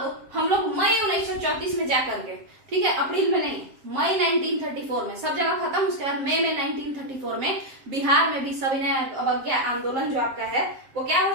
हम लोग मई 1934 में जाकर के, ठीक है, अप्रैल में नहीं, मई 1934 में सब जगह खत्म। उसके बाद मई में 1934 में बिहार में भी सविनय अवज्ञा आंदोलन जो आपका है वो क्या हो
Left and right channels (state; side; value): late; left; 7.6 ms